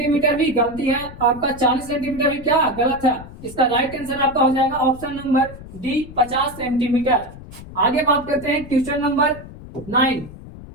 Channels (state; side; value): noise; left; rumble, 15 dB below the sound